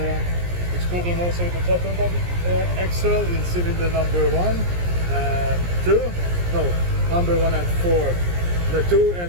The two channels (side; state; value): left; late; 17 ms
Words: it's problem also with the throttle body axle in cylinder number 1 and 2. No, number 1 and 4. The 2